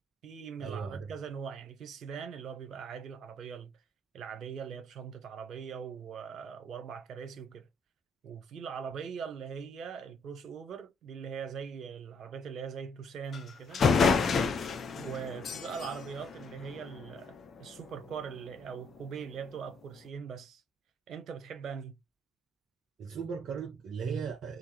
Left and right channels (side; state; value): both; normal; correlation 0.68